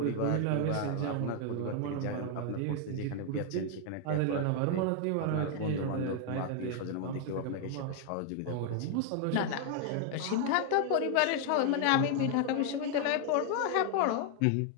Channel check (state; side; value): different; both; correlation 0.00